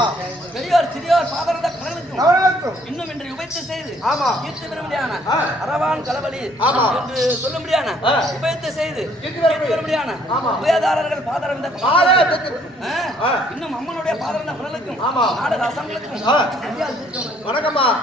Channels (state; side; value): normal; both; correlation 0.64